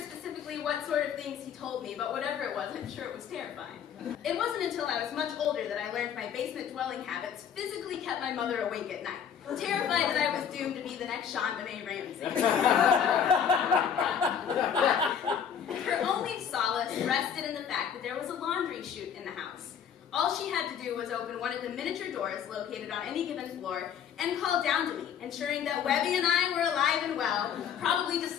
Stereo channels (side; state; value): right; quieter; 8.2 dB